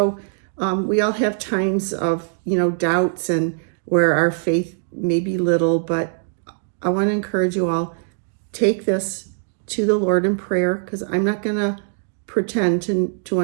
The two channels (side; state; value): left; silent; digital silence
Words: we all have times of, doubts and where our faith may be little, but I want to encourage you all, take this to the Lord in prayer, because I'm not going to pretend to